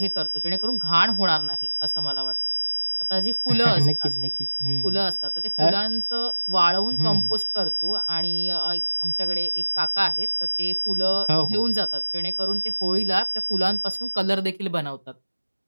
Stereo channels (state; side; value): inverted; both; correlation -1.00